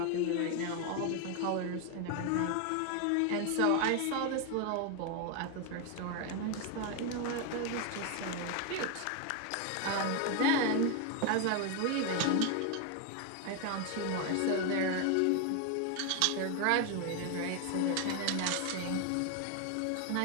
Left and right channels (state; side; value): different; both; correlation 0.01